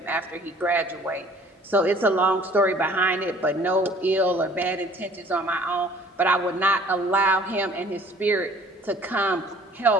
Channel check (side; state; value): both; normal; correlation 0.53